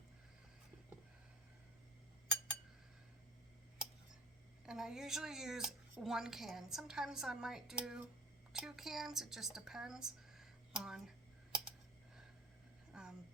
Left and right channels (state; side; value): normal; both; correlation 0.42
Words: And I usually use 1 can. Sometimes I might do 2 cans. It just depends on